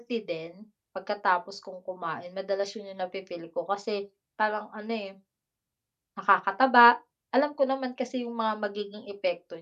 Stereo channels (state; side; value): identical; both; correlation 1.00